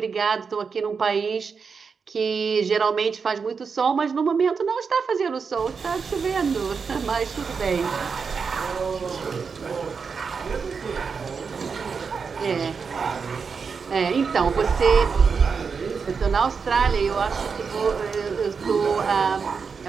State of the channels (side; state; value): left; quieter; 5.6 dB